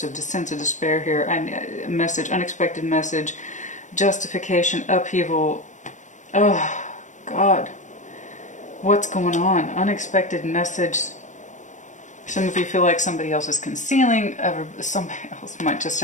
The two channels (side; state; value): right; late; 0.35 ms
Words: a sense of despair here. A message, unexpected message. Justification, upheaval. Oh, God. What's going on? Unexpected message. Some of you feel like somebody else is concealing. Somebody else might just